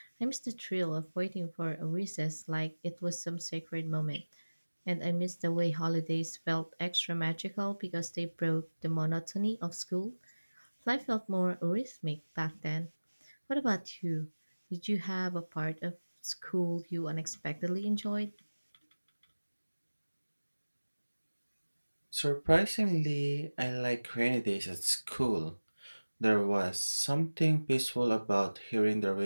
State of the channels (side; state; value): both; inverted; correlation -1.00